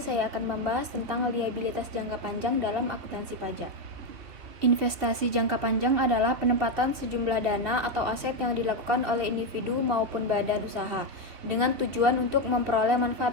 saya akan membahas tentang liabilitas jangka panjang dalam akuntansi pajak. Investasi jangka panjang adalah penempatan sejumlah dana atau aset yang dilakukan oleh individu maupun badan usaha dengan tujuan untuk memperoleh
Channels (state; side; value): late; left; 2.9 ms